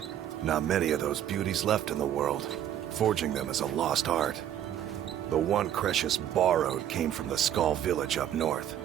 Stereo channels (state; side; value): quieter; left; 10.8 dB